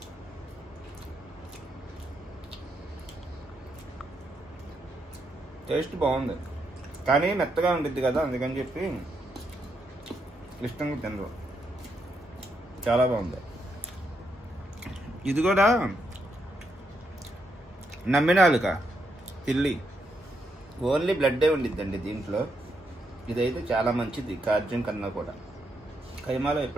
టేస్ట్ బాగుంది కానీ మెత్తగా ఉండిద్ది కదా, అందుకని చెప్పి ఇష్టంగా తినరు. చాలా బాగుంది. ఇది కూడా నమ్మినాలుక తిల్లి ఓన్లీ బ్లడ్డే ఉండిద్దండి దీంట్లో. ఇదైతే చాలా మంచిది కార్జం కన్నా కూడా. కైమాలో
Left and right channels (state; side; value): normal; both; correlation 0.79